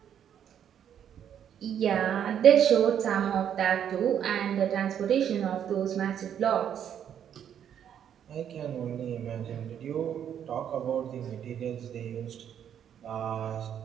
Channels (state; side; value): quieter; left; 9.2 dB